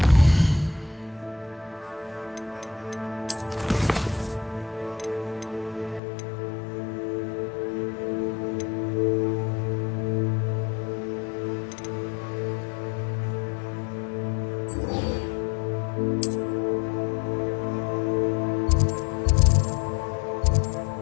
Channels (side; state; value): right; drops out; at 6.0 s